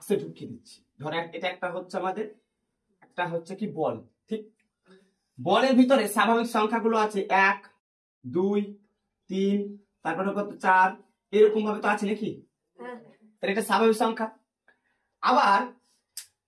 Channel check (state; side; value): identical; both; correlation 1.00